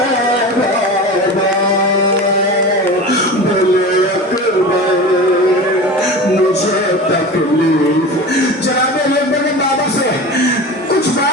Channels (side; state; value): both; normal; correlation 0.31